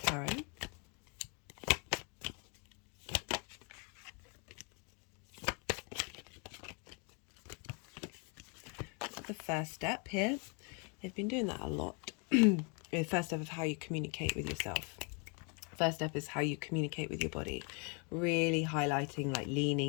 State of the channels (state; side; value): quieter; right; 35.1 dB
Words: The first step here. They've been doing that a lot. The first step of how you communicate with yourself. First step is how you communicate with your body. Really highlighting, like